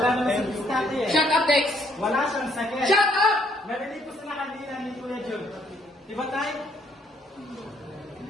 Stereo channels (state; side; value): normal; both; correlation 0.68